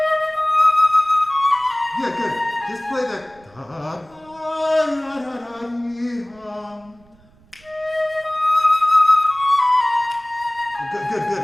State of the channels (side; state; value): right; noise; rumble, 29 dB below the sound